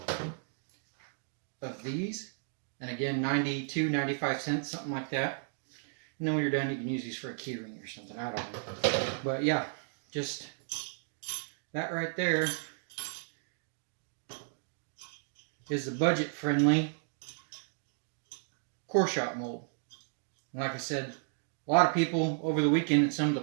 of these. And again, 92, 95 cents, something like that. And then when you're done, you can use these for a keyring or something. I don't know. But yeah, just that right there is the budget-friendly core shop mold. And like I said, a lot of people over the weekend at some of the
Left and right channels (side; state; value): left; silent; digital silence